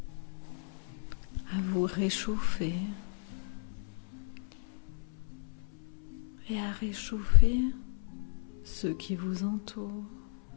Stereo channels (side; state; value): right; silent; 55 dB below the other